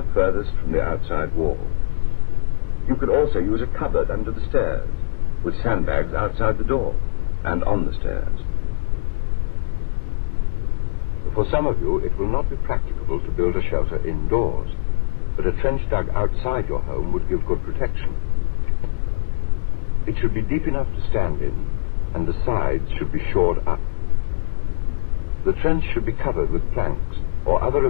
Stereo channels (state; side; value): silent; right; digital silence